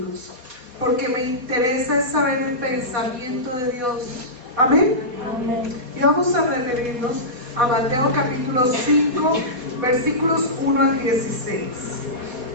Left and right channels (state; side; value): late; left; 4.1 ms